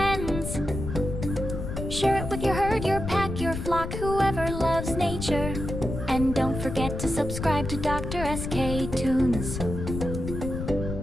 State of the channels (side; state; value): left; noise; rumble, 5 dB below the sound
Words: Share it with your herd, your pack, your flock, whoever loves nature. And don't forget to subscribe to DrSK Toons,